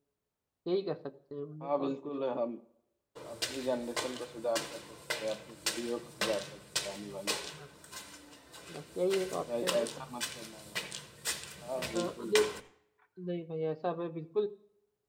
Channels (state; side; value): identical; both; correlation 1.00